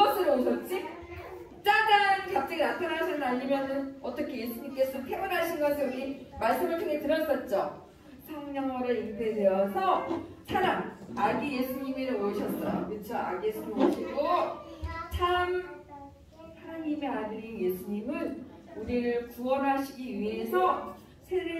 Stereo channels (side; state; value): both; identical; correlation 1.00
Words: 오셨지? 짜잔! 갑자기 나타나셨나? 아니면 어떻게 예수님께서 태어나신 것을 우리 말씀을 통해 들었었죠. 성령으로 잉태되어서 사람, 아기 예수님이 오셨어요. 그렇죠? 아기 예수님 오시고 참 하나님의 아들인 예수님은 우리를 구원하시기 위해서